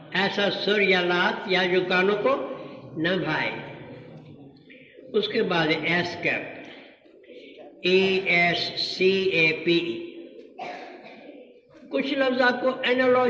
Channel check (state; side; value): identical; both; correlation 1.00